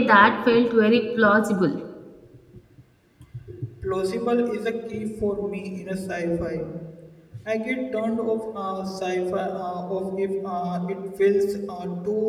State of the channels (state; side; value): identical; both; correlation 1.00